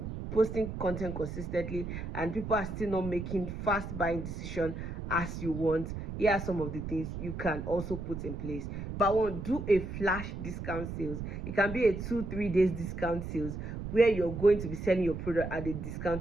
posting content consistently, and people are still not making fast buying decision as you want, here are some of the things you can also put in place. But one, do a flash discount sales. It can be a 2-3 days discount sales where you're going to be selling your product at a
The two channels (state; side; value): noise; right; rumble, 6 dB below the sound